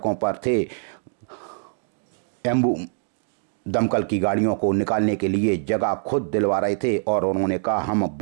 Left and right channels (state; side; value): silent; left; digital silence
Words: पर थे, दमकल की गाड़ियों को निकालने के लिए जगह खुद दिलवा रहे थे और उन्होंने कहा हम